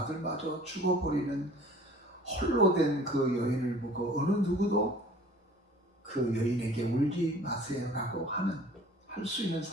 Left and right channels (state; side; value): normal; both; correlation 0.48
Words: 죽어버리는 홀로 된 그 여인을 보고 어느 누구도 그 여인에게 울지 마세요라고 할 수 있는